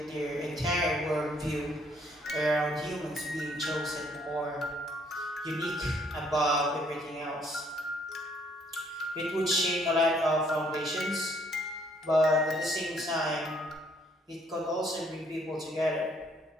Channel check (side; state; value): both; normal; correlation 0.65